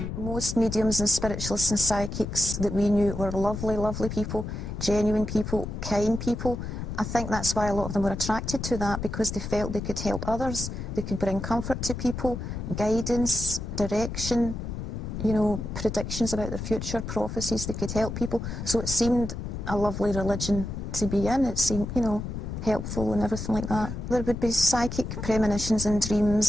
Most mediums and spiritualists and psychics that we knew were lovely, lovely people, genuine people, kind people. I think that's why a lot of them were attracted to that, because they felt they could help others, they could bring comfort to people, guidance, direction, you know, predictions about their future, prophecies, they could help people. So it seemed a lovely religion to be in. It seemed, you know, helpful and everything like that. There would be psychic premonitions and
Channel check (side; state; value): left; noise; rumble, 6 dB below the sound